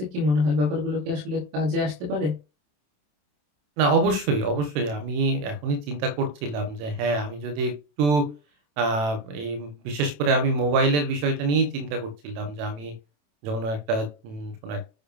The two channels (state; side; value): late; left; 27 ms